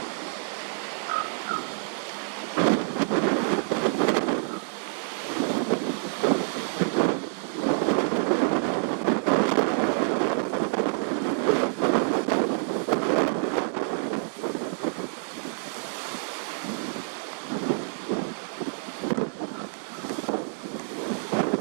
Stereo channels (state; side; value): silent; left; 60 dB below the other